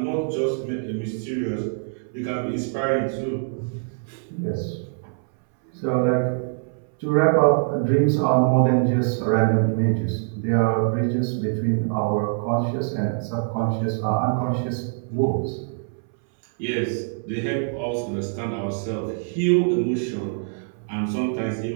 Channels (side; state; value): left; silent; 63 dB below the other